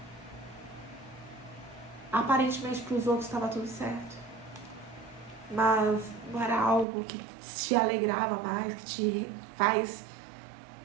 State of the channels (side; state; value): left; drops out; at 6.9 s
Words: Aparentemente para os outros estava tudo certo, mas não era algo que te alegrava mais, que te faz